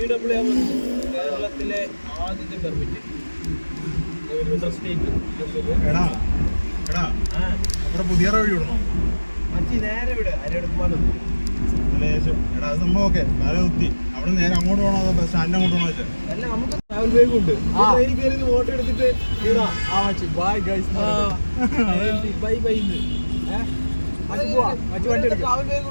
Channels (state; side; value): inverted; both; correlation -1.00